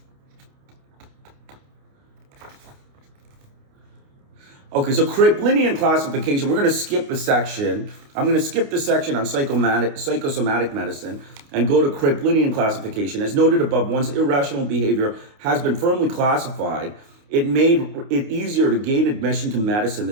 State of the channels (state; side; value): late; left; 29 ms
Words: Okay, so Kraepelinian classification, we're going to skip a section. I'm going to skip the section on psychosomatic medicine and go to Kraepelinian classification. As noted above, once irrational behavior has been firmly classified, it made it easier to gain admission to medicine. The